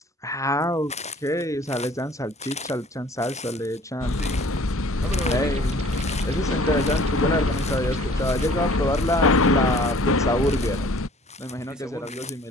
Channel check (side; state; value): both; normal; correlation 0.52